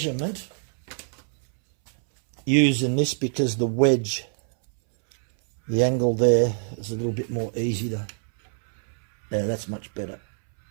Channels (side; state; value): left; silent; 62 dB below the other